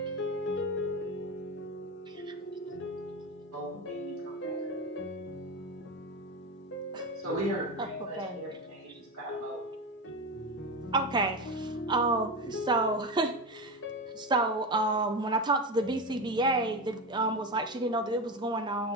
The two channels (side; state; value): both; normal; correlation 0.20